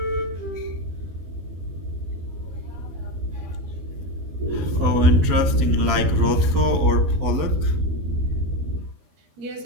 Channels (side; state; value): left; late; 12 ms